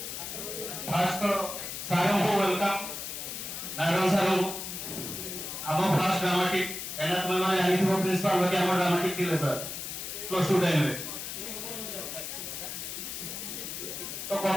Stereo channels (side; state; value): left; noise; hiss, 6 dB below the sound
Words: ଫାଷ୍ଟ ସାରଙ୍କୁ ୱେଲକମ୍ ନାରାୟଣ ସାରଙ୍କୁ ଆମ ଫାଷ୍ଟ ଡ୍ରାମାଟିକ ଏନା ତୁମେ ମାନେ ଜାଣିଥିବ ପ୍ରିନ୍ସିପାଲ ବାକି ଆମ ଡ୍ରାମାଟିକ ଥିଲେ ସାର୍ ପ୍ଲସ୍ 2 ଟାଇମରେ। तो